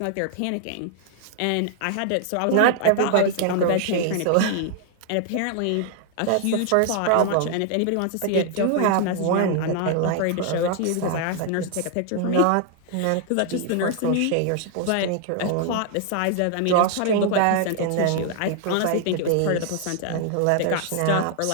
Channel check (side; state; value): both; different; correlation 0.00